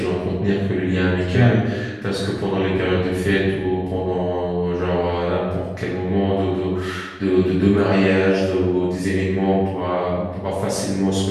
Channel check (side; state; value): both; identical; correlation 1.00